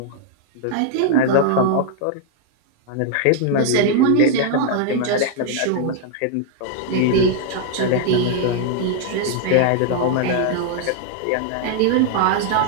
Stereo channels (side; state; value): both; different; correlation 0.00